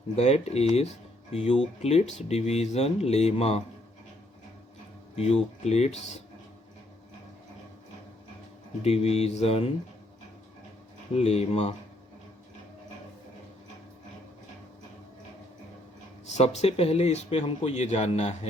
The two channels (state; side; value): normal; both; correlation 0.69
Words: that is Euclid's division lemma. Euclid's division lemma. सबसे पहले इसमें हमको ये जानना